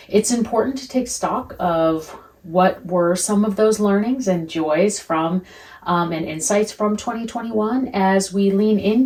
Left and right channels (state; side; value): identical; both; correlation 1.00